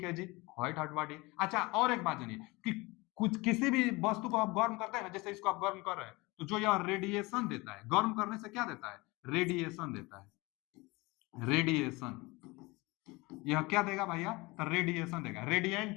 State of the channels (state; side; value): quieter; right; 23.6 dB